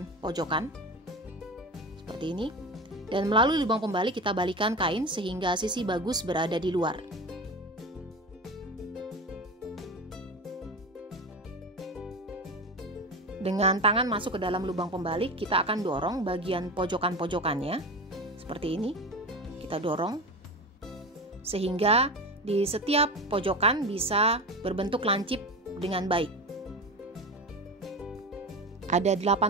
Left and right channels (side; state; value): both; normal; correlation 0.27